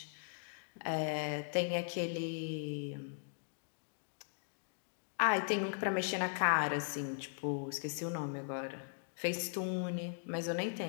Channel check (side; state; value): right; silent; digital silence